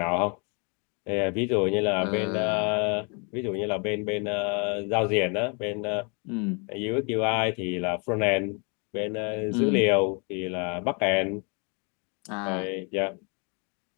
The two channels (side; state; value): right; quieter; 35.4 dB